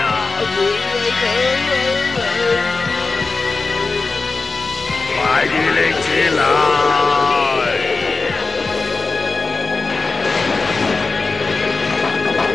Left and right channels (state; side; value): quieter; right; 4.0 dB